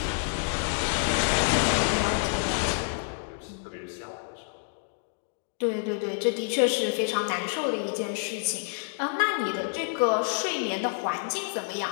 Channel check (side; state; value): right; silent; 59 dB below the other